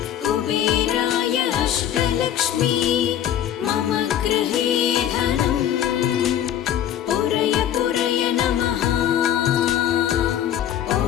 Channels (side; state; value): right; quieter; 10.6 dB